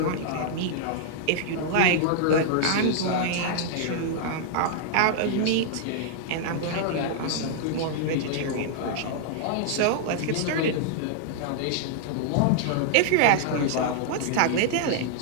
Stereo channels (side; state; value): both; different; correlation -0.01